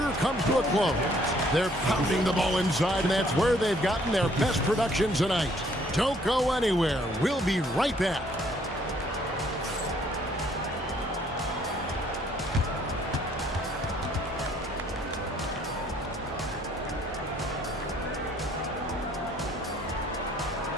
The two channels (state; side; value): normal; both; correlation 0.63